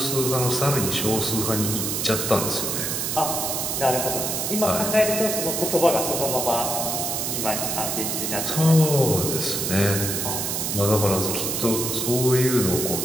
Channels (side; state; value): right; noise; hiss, 1 dB below the sound